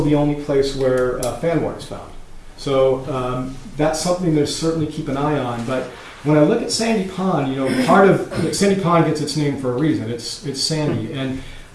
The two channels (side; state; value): both; identical; correlation 1.00